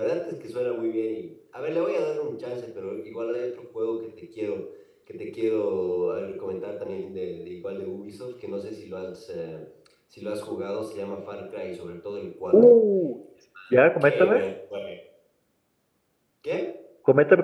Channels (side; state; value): both; identical; correlation 1.00